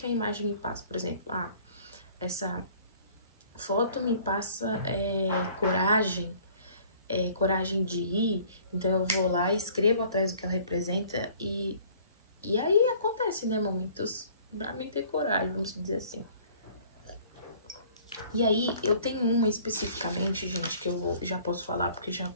a imagem me passa. Por exemplo, essa foto me passa coragem de ir, então eu vou lá e escrevo atrás do que ela representa e aí acontece, né, momentos pra mim ter coragem, vamos dizer assim. E aí, eu tenho uma especificamente, gente, que eu já posso falar porque já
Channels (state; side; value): inverted; both; correlation -0.54